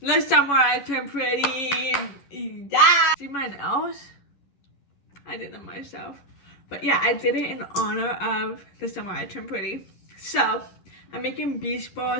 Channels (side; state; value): right; late; 11 ms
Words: the summer I turn pretty. Yeah. See my nails? I did them myself. But yeah, I did it in honor of the summer I turned pretty. So I'm making beach